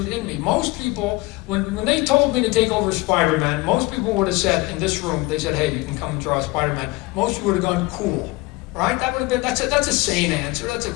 in me. Most people, when they told me to take over Spider-Man, most people would have said, in this room, they said, hey, you can come and draw Spider-Man. Most people would have gone, cool, right? That would have been, that's a sane answer. That's a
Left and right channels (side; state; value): right; quieter; 22.2 dB